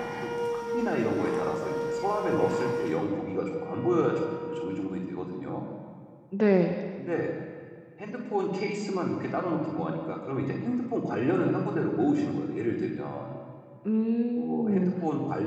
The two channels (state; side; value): identical; both; correlation 1.00